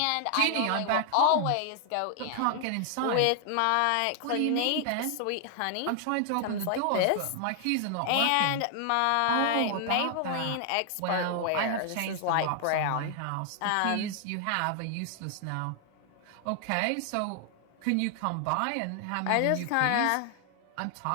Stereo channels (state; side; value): different; both; correlation 0.00